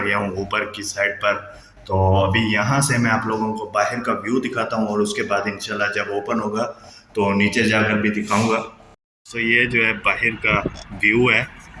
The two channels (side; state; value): both; identical; correlation 1.00